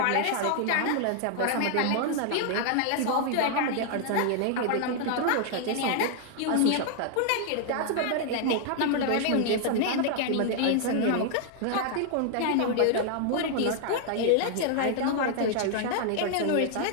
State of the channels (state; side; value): different; both; correlation 0.00